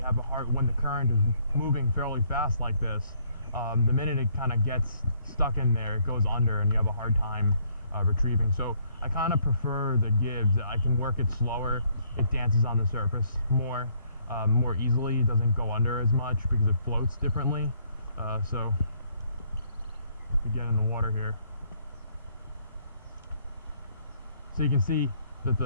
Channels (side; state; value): both; inverted; correlation -0.67